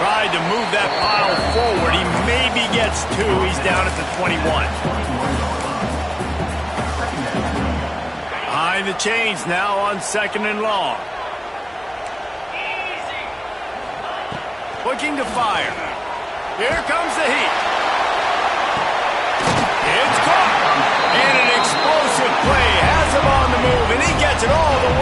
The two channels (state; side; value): identical; both; correlation 1.00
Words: Tried to move that pile forward. He maybe gets 2. He's down at the 21. Behind the chains now on 2nd and long. Looking to fire. Here comes the heat. It's caught. And an explosive play has him on the move, and he gets it all the